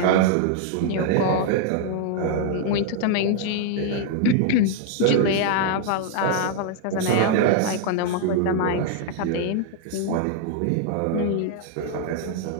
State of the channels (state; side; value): different; both; correlation 0.00